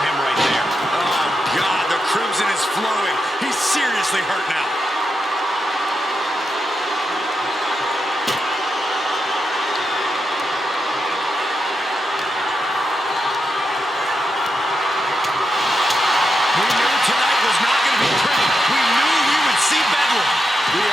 him right there. Oh, God, the crimson is flowing. He's seriously hurt now. We knew tonight was not going to be pretty. We knew we would see bedlam. We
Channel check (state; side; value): normal; both; correlation 0.86